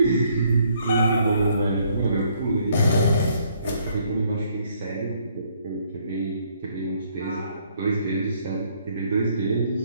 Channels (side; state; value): both; inverted; correlation -0.68